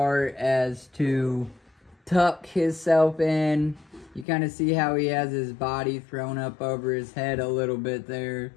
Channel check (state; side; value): drops out; right; at 4.2 s